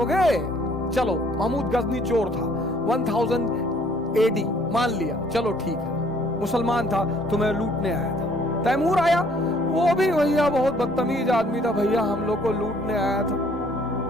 चलो महमूद गजनी चोर था, 1000 AD मान लिया, चलो ठीक है, मुसलमान था, तुम्हें लूटने आया था। तैमूर आया, वो भी भैया बहुत बदतमीज आदमी था, भैया हम लोग को लूटने आया था,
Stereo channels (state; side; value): normal; both; correlation 0.61